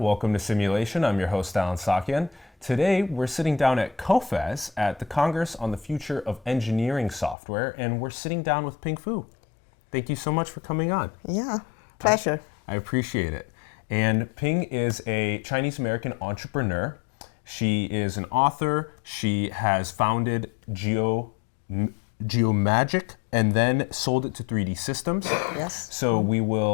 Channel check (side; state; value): right; drops out; at 7.4 s